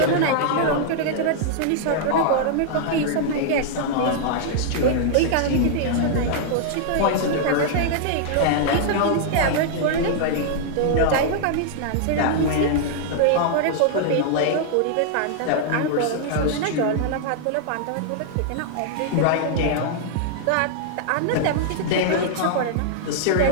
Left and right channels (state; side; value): different; both; correlation -0.01